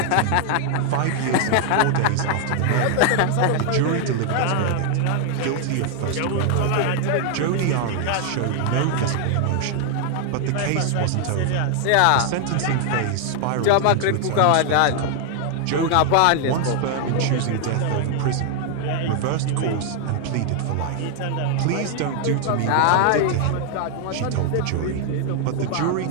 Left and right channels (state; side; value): different; both; correlation 0.00